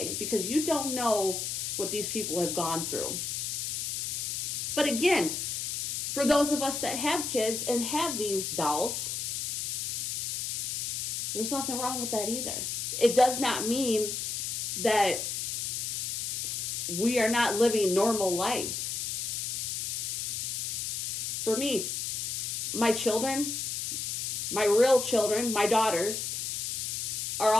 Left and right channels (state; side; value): noise; left; hiss, 2 dB below the sound